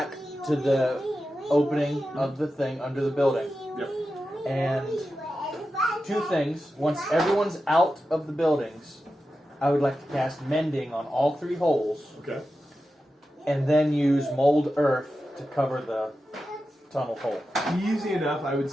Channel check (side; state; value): both; normal; correlation 0.91